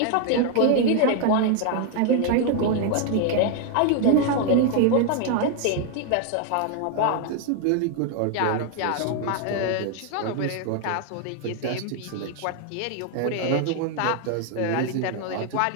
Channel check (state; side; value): different; both; correlation 0.00